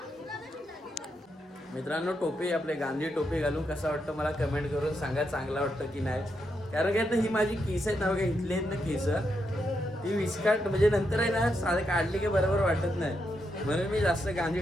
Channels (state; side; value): normal; both; correlation 0.82